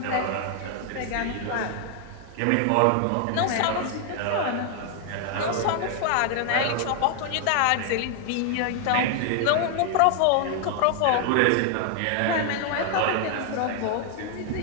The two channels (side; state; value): both; different; correlation 0.00